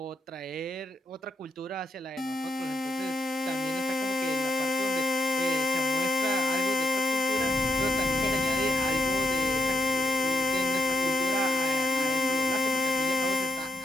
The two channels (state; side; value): normal; both; correlation 0.79